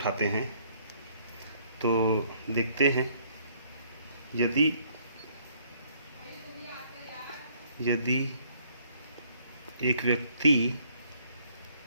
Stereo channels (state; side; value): inverted; both; correlation -0.64